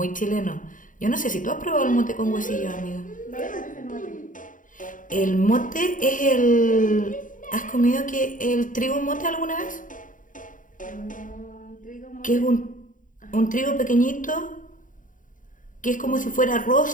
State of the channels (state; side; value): late; right; 0.38 ms